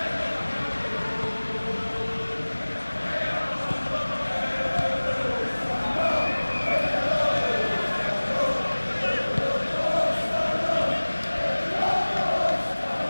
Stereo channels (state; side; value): inverted; both; correlation -1.00